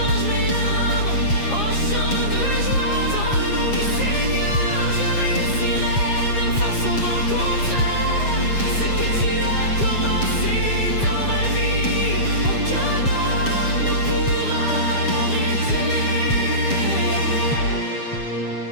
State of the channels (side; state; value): right; late; 7.4 ms